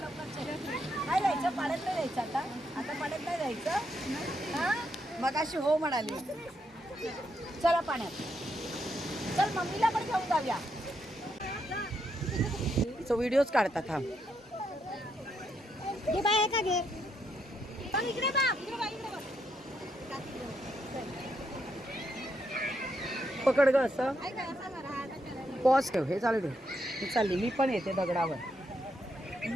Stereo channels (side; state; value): both; normal; correlation 0.78